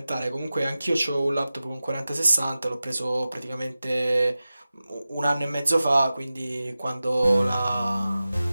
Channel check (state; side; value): inverted; both; correlation -0.95